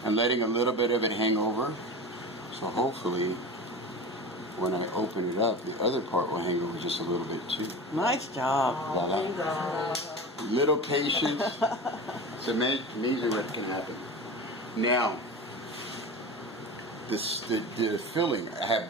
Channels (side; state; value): both; normal; correlation 0.30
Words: and letting a little bit of it hang over. So hopefully, when I open it up, the other part will hang over just a little bit too. Nice job. Voila. Little patience. It's amazing what can happen. Now, the filling. I have